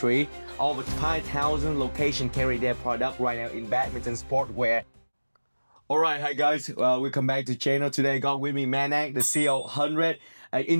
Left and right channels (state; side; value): inverted; both; correlation -1.00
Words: Over 5,000 locations carry their product right now in badminton sportwear. Alright, hi guys, welcome back to channel. Today I got with me Manak, the CEO of 100, an